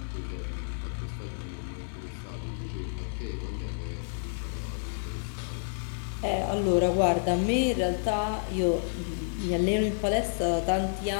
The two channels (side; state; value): right; silent; digital silence